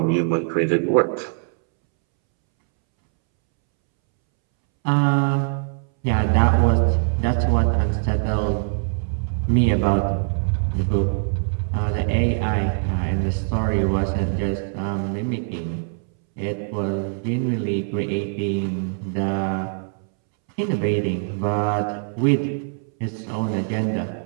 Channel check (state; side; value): silent; left; 64 dB below the other